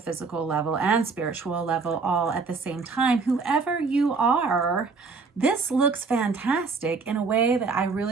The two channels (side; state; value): left; quieter; 4.5 dB